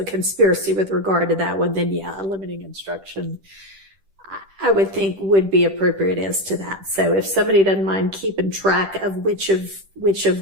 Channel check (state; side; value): late; left; 10 ms